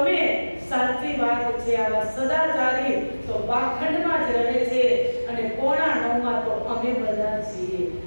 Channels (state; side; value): inverted; both; correlation -1.00